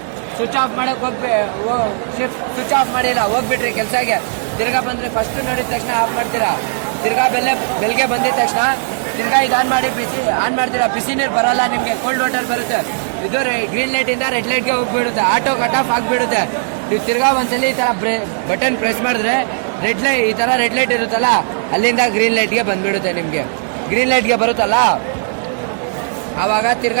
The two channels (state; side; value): silent; left; digital silence